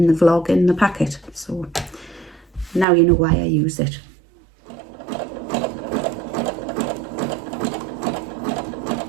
the vlog in the packet. So now you know why I use it.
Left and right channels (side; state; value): left; drops out; at 2.9 s